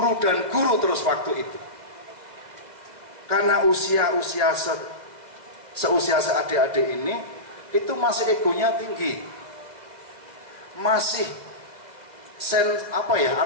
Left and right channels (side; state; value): left; late; 2.0 ms